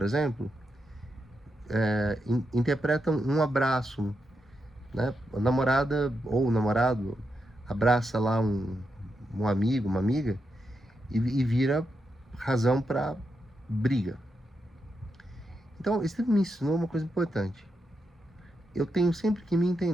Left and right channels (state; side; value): normal; both; correlation 0.85